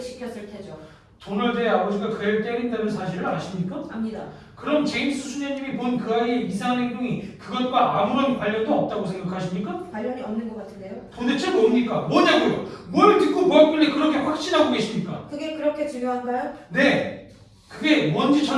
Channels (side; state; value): both; identical; correlation 1.00